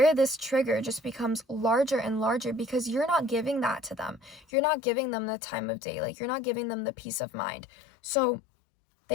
this trigger just becomes larger and larger because you're not giving that to them. You're not giving them the time of day. Like, you're not giving them the peace of mind. So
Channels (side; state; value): right; drops out; at 4.5 s